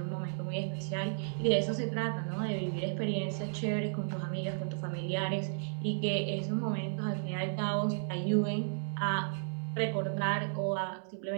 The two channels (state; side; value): silent; left; digital silence